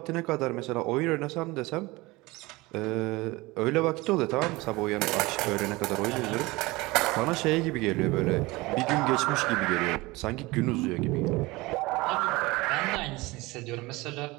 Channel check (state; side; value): quieter; left; 21.8 dB